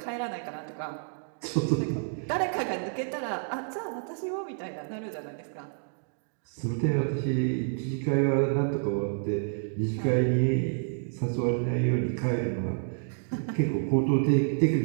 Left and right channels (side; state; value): left; silent; digital silence